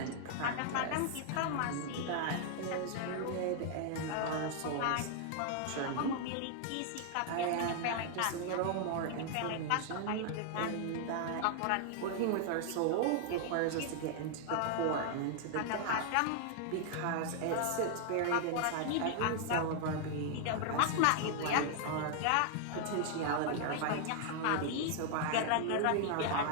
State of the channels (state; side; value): different; both; correlation 0.00